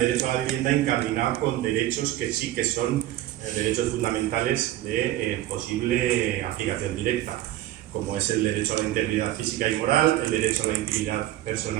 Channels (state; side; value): quieter; left; 14.3 dB